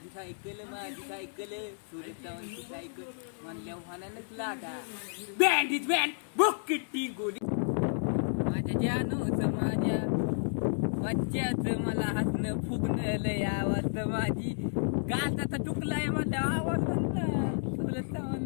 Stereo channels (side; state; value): right; silent; digital silence